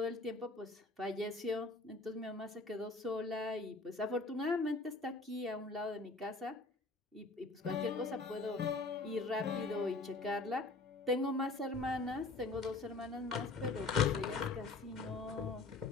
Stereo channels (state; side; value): quieter; right; 3.5 dB